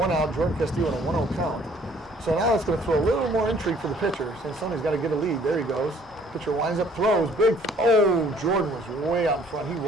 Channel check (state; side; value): normal; both; correlation 0.58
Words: out. Jordan Castillo on a 1-0 count. So now it's going to throw a little more intrigue for the pitcher. Sansoni's got to get a lead. There he goes. Pitcher winds up, throws. Big. Oh, Jordan was way out in front. He